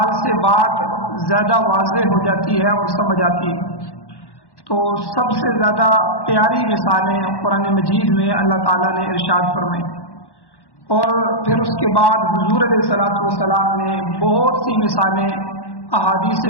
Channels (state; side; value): late; right; 1.1 ms